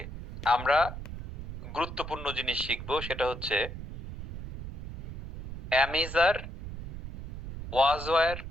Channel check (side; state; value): right; noise; rumble, 8 dB below the sound